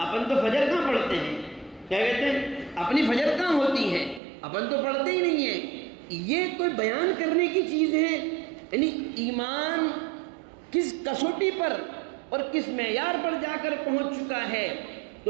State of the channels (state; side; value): drops out; left; at 4.2 s